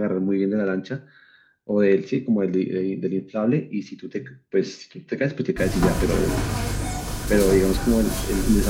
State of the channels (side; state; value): both; identical; correlation 1.00